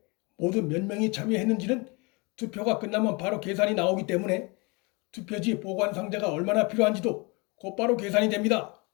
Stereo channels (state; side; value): quieter; right; 28.5 dB